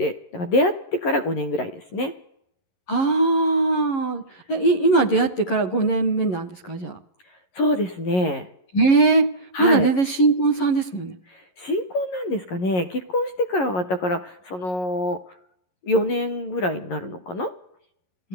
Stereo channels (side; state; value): right; late; 11 ms